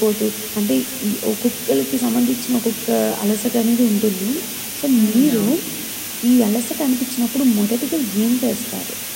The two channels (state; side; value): identical; both; correlation 1.00